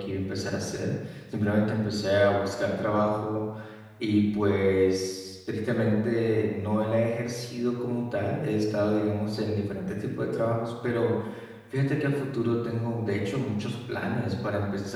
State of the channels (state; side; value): identical; both; correlation 1.00